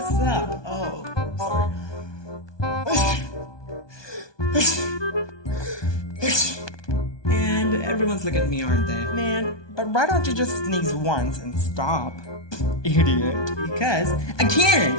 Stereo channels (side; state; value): right; late; 1.2 ms